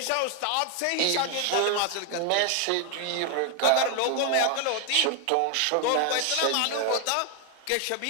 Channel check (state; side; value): different; both; correlation 0.01